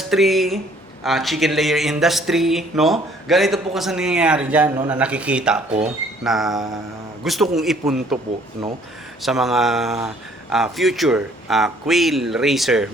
chicken layer industry, no? Ganito po kasi nangyayari diyan, no, na nakikita ko na gusto kong ipunto po, no, sa mga future quail racer,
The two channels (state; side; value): normal; both; correlation 0.59